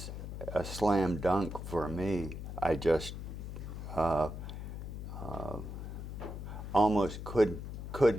a slam dunk for me. I just almost couldn't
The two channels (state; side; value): noise; left; hum, 7 dB below the sound